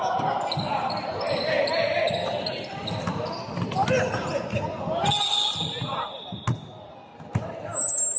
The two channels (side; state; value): both; identical; correlation 1.00